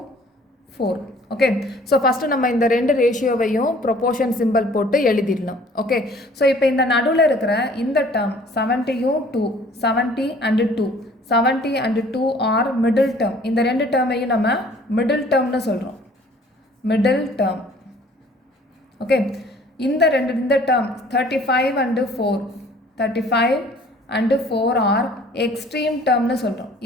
Okay, so first நம்ம இந்த ரெண்டு ரேஷியோவையும் ப்ரொப்போர்ஷன் சிம்பிள் போட்டு எழுதிடலாம். ஓகே, ஸோ இப்போ இந்த நடுவில் இருக்கிற இந்த term 70 and 2 are middle term. இந்த ரெண்டு டேர்மையும் நம்ம மிடில் டேர்ம்னு சொல்கிறோம். ஓகே, இந்த டேர்ம் 35 and 4 ஆர் எக்ஸ்ட்ரீம் டேர்ம்னு சொல்கிறோம்.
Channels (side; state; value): both; normal; correlation 0.54